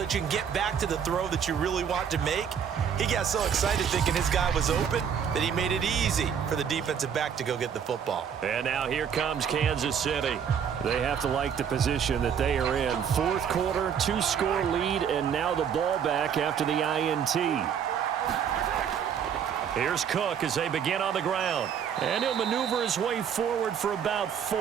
that you can get back to the throw that you really want to make. He got so excited thinking his guy was open that he made it easy for the defensive back to go get the football. And now here comes Kansas City. They have to like the position that they are in. 4th quarter, 2-score lead, and now the ball back after the INT. Here's Cook as they begin on the ground. And he'll maneuver his way forward for about 4.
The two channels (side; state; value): left; quieter; 7.9 dB